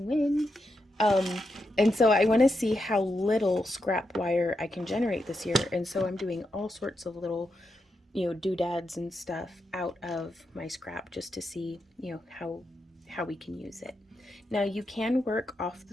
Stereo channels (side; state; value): both; normal; correlation 0.85